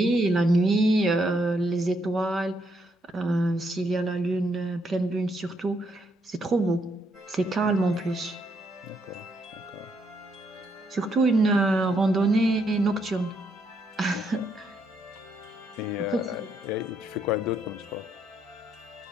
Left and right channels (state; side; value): normal; both; correlation 0.75